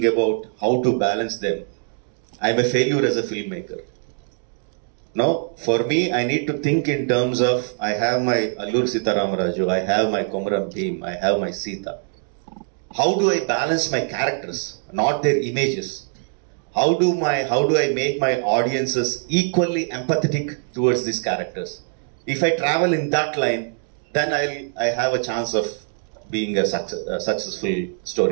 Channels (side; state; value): left; silent; 56 dB below the other